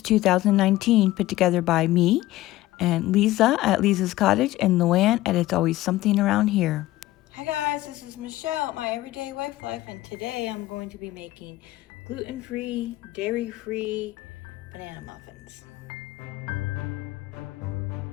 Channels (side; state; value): right; quieter; 16.6 dB